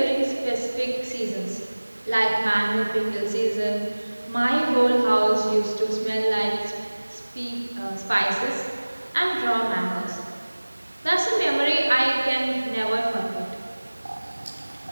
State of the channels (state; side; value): inverted; both; correlation -1.00